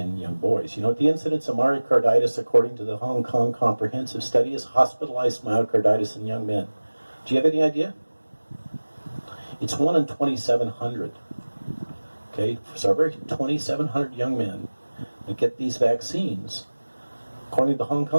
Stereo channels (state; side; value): inverted; both; correlation -1.00